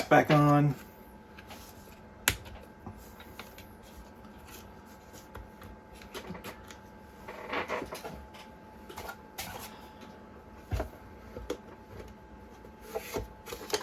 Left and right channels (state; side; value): identical; both; correlation 1.00